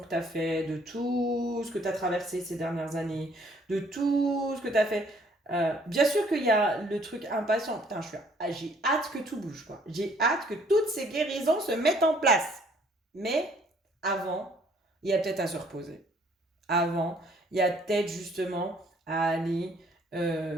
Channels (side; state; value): both; normal; correlation 0.61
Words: tu as fait, de tout ce que tu as traversé ces dernières années, de tout ce que tu as fait. Bien sûr qu'il y a le truc impatient. Putain, j'ai hâte que tout bouge, quoi. J'ai hâte que toutes ces guérisons se mettent en place. Mais avant, il y a peut-être à se reposer. Avant, il y a peut-être justement à aller